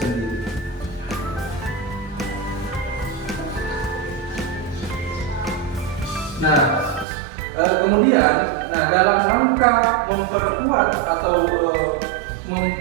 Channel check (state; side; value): drops out; left; at 7.1 s